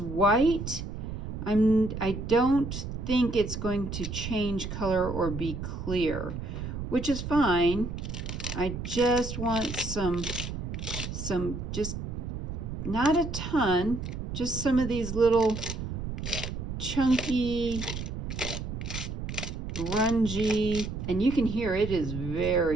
I don't think it's going to change color or be clear, which is fine. I just want some just not a ton, just some of these little chunky, grungy, and you can hear it is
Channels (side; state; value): right; noise; rumble, 6 dB below the sound